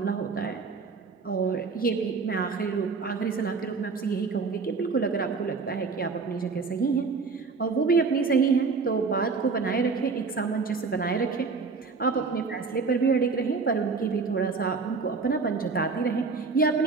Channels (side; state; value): left; quieter; 4.7 dB